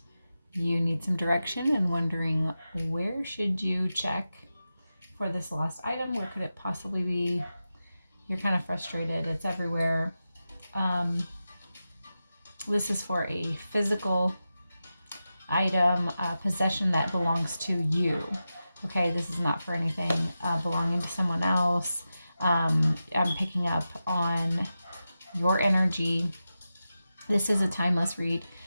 you need some direction and wondering where should you check for this lost item, where could it possibly be, you're kind of frustrated, it's everywhere. This is for a physical item, possession that belongs to you. Okay, this is not for anything belonging to someone else. I'm picking up on your energy. This is a timeless read.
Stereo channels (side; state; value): both; inverted; correlation -0.92